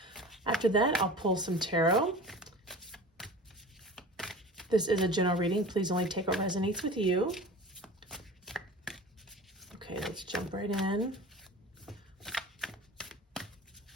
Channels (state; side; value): normal; both; correlation 0.37